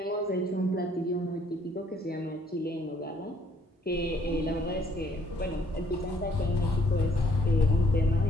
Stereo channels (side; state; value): both; normal; correlation 0.64